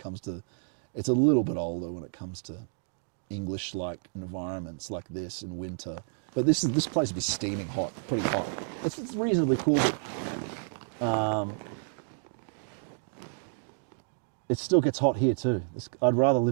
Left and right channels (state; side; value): silent; left; digital silence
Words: to, it's a little bit older when it comes to English-like environments like this in winter. But this place would be steaming hot, pretty hot. It's reasonably cool, but it still gets hot here too. I'd rather